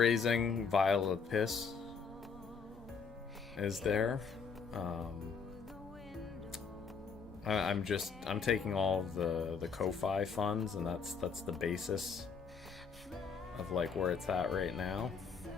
vial of piss is there. I'm taking all of the Ko-Fi funds, and that's the basis of like where it's at right now.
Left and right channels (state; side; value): quieter; right; 5.6 dB